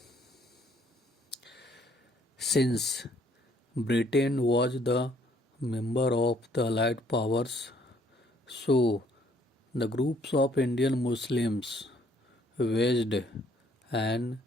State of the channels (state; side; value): normal; both; correlation 0.64